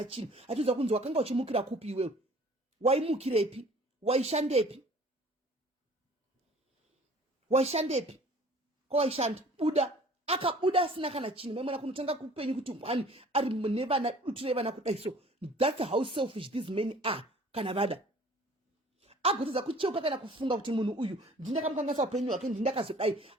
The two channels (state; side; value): normal; both; correlation 0.51